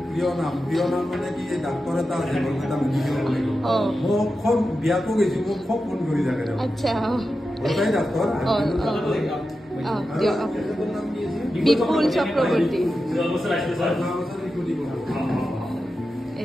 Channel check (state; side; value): normal; both; correlation 0.91